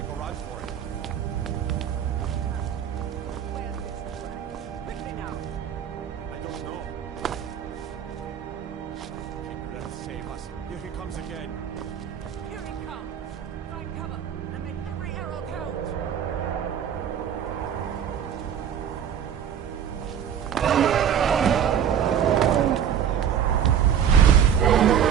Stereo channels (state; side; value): quieter; left; 8.8 dB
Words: a run for it. I don't know. Kindred, save us. Here he comes again. Here he comes. Find cover and make every arrow count.